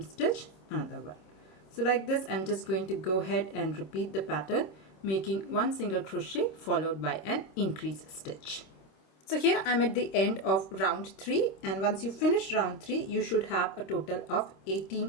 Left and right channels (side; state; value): right; late; 26 ms